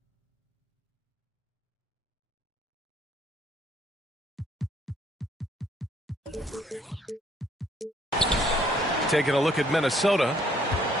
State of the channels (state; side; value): normal; both; correlation 0.64